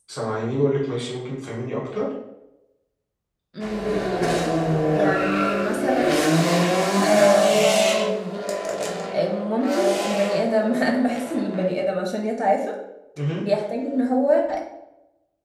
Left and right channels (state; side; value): identical; both; correlation 1.00